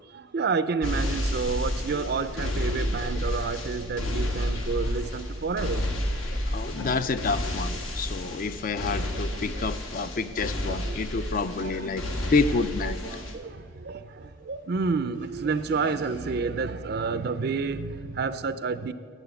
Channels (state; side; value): normal; both; correlation 0.41